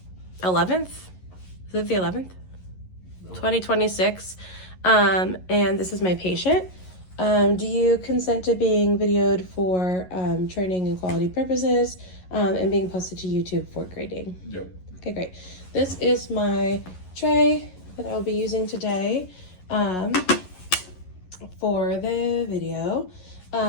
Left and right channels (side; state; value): right; late; 11 ms